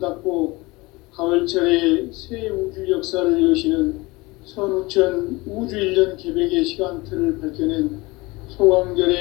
가을철에 새 우주 역사를 여시는 선우천 우주 1년 개백의 시간틀을 밝혀낸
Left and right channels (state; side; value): quieter; right; 23.0 dB